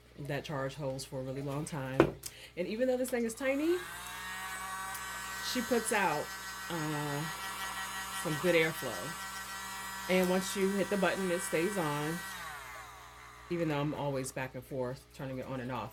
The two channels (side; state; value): both; identical; correlation 1.00